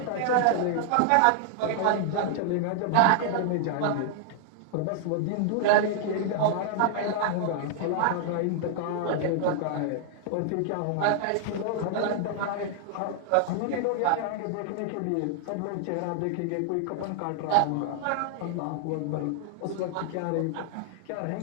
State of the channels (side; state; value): both; different; correlation 0.00